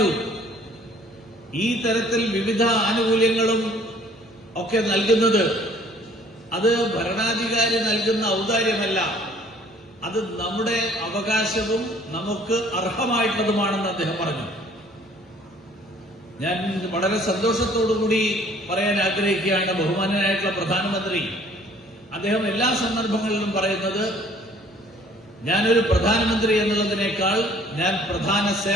ഈ തരത്തിൽ വിവിധ ആനുകൂല്യങ്ങളും ഒക്കെ നൽകുന്നത് അത് ഭരണാധികാരി നൽകുന്ന ഔദാര്യമല്ല, അത് നമ്മുടെ അവകാശവും നമുക്ക് അർഹമായിട്ടുള്ളതുമാണെന്ന് അദ്ദേഹം പറഞ്ഞു. ഞാൻ വളരെ സന്തോഷത്തോടുകൂടി പറയാൻ ആഗ്രഹിക്കുകയാണ്, ബഹുമാന്യനായിട്ടുള്ള പ്രധാനമന്ത്രി അദ്ദേഹം എല്ലാ സന്ദർഭങ്ങളിലും പറയുന്നത്, ഞാനൊരു പ്രധാനമന്ത്രി എന്നുള്ളതിനേക്കാൾ ഞാൻ പ്രധാന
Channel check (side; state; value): both; normal; correlation 0.56